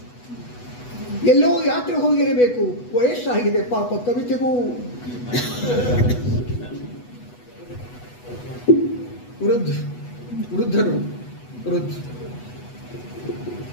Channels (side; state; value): right; late; 8.1 ms